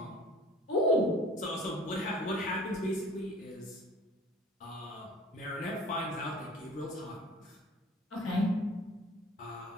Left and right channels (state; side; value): normal; both; correlation 0.46